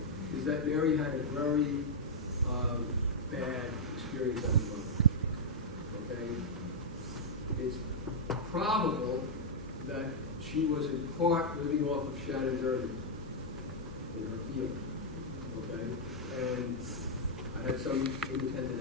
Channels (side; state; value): both; normal; correlation -0.07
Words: is that Mary had a very bad experience as a mother. Okay? It's probable that she was in part living off of Shannon's earnings in her field. Okay? And I had some